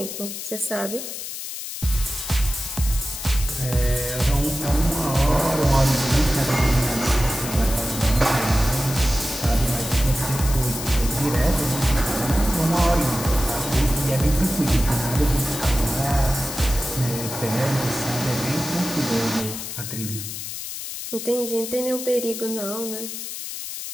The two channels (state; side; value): noise; left; hiss, 7 dB below the sound